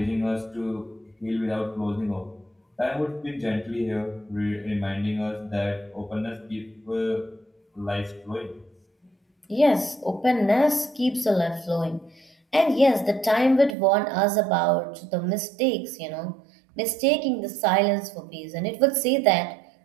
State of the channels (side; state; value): left; drops out; at 13.8 s